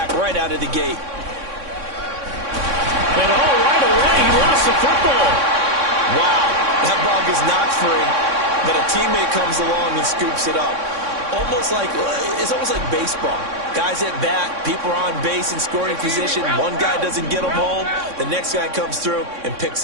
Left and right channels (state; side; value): late; left; 3.6 ms